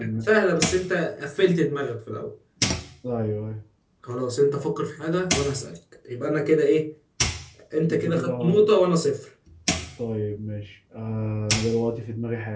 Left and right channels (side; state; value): both; identical; correlation 1.00